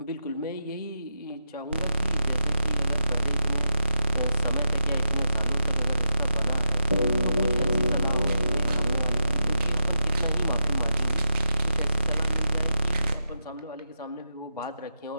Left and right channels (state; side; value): inverted; both; correlation -0.87